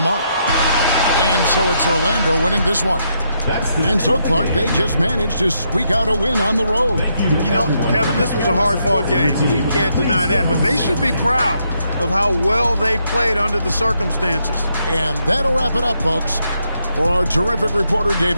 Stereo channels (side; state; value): both; inverted; correlation -0.78